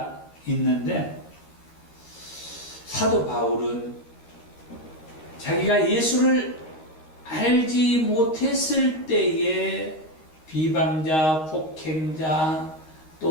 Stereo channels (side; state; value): right; late; 13 ms